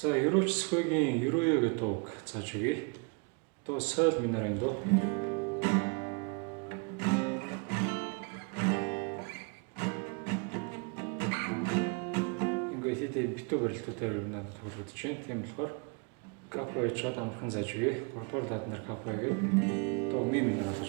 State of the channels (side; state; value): left; quieter; 34.6 dB